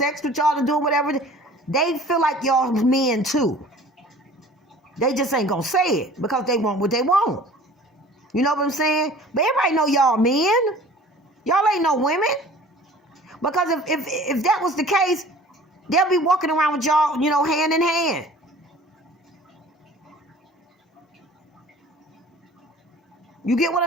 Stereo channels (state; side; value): normal; both; correlation 0.46